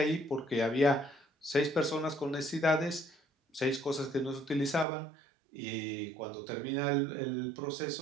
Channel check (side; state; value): left; drops out; at 4.9 s